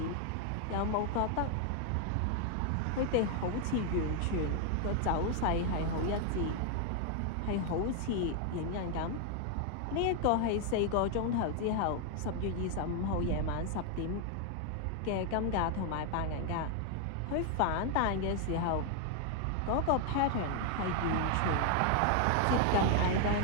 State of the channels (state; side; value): different; both; correlation 0.00